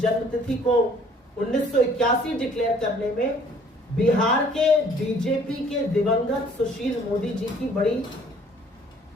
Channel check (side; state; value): both; normal; correlation 0.57